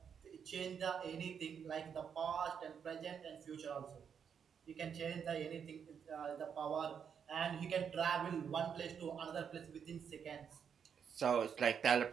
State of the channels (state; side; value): quieter; left; 7.3 dB